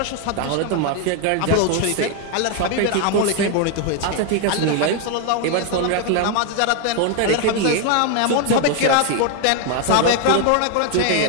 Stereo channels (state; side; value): different; both; correlation 0.01